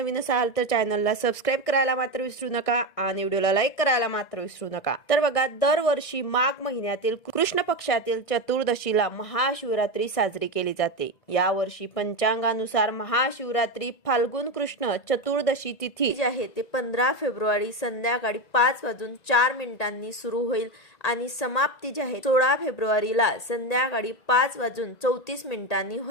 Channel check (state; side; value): late; right; 1.9 ms